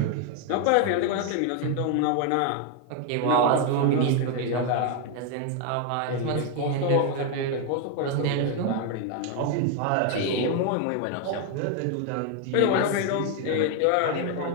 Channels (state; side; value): different; both; correlation 0.01